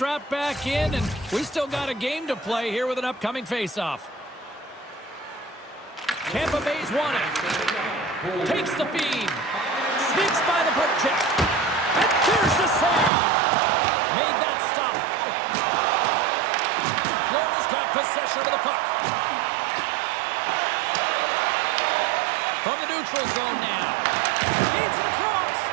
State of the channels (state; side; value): drops out; left; at 13.1 s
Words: back in, and we still got a game to play here with an upcoming face-off. Tampa Bay's won it. Takes the feed. Sneaks by the poke check. And there's the save. Made that stop. Florida's got possession of the puck. From the neutral zone now. Feeds it across.